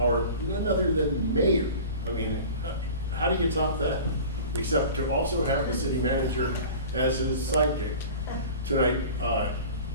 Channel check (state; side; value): inverted; both; correlation -0.39